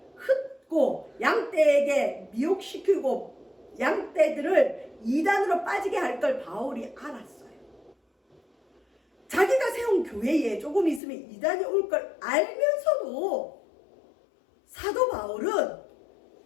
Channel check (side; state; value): right; drops out; at 11.0 s